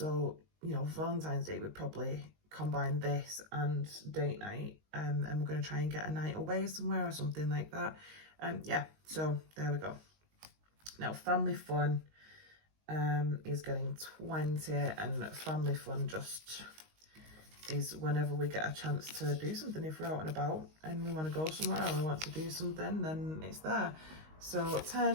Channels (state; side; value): late; left; 19 ms